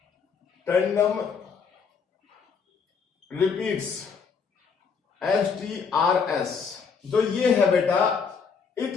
टैंडम रिपीट्स, STRs। जो ये है बेटा, इट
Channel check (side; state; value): right; quieter; 5.8 dB